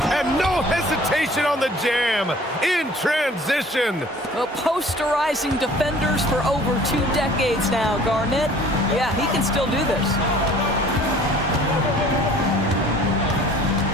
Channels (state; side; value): normal; both; correlation 0.51